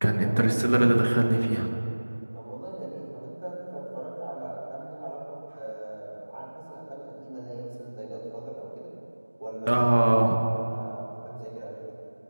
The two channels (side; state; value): both; inverted; correlation -1.00